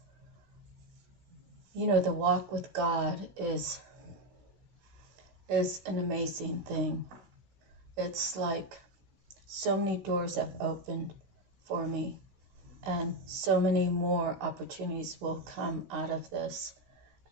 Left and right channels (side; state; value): left; late; 16 ms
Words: the walk with God is an amazing thing. It's like so many doors have opened for me, and so many more opportunities will come out of this.